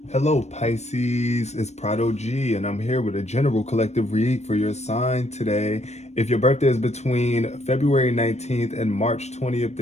Hello Pisces, it's Prado G, and I'm here with a general collective read for your sign today. If your birthday is between February 19th and March 20th,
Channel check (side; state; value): right; late; 0.32 ms